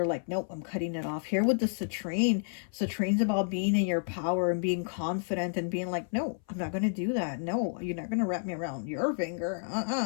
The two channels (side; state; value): right; silent; 57 dB below the other